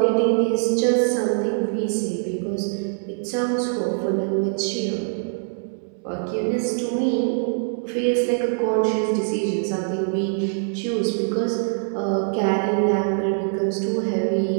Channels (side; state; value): left; silent; digital silence